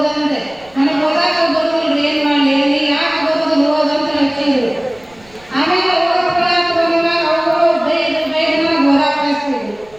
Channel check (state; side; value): noise; right; rumble, 28 dB below the sound